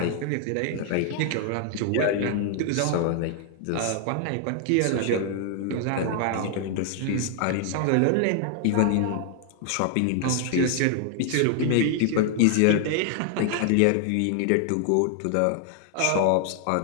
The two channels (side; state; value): both; different; correlation 0.00